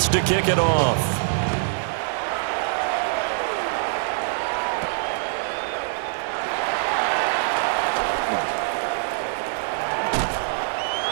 to kick it off.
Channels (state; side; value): silent; left; digital silence